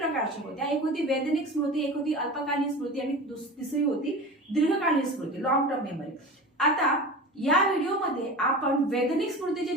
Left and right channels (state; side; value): normal; both; correlation 0.32